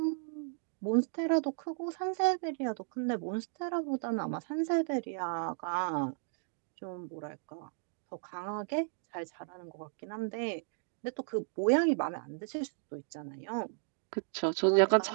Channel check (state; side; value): silent; left; digital silence